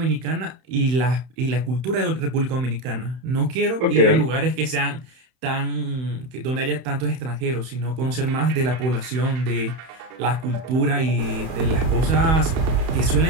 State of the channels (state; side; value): late; left; 31 ms